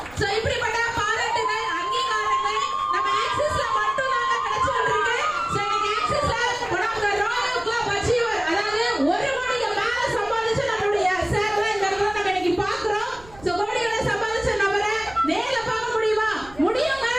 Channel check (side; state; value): right; noise; rumble, 22 dB below the sound